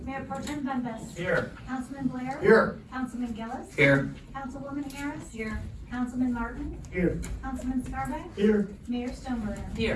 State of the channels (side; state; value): both; identical; correlation 1.00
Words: Mayor Pro Tem Dundas. Here. Councilman Blair. Here. Councilman Gillis. Here. Councilwoman Harris. Here. Councilman Martin. Here. Councilman Scarback. Here. Mayor Stoneburner.